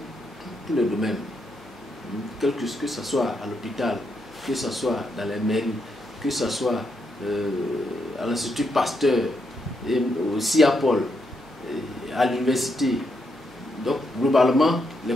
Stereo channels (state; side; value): normal; both; correlation 0.80